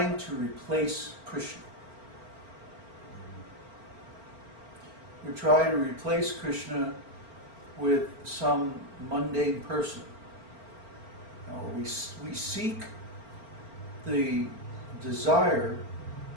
to replace Krishna. We try to replace Krishna with some mundane person. We seek the desire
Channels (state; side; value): late; left; 4.4 ms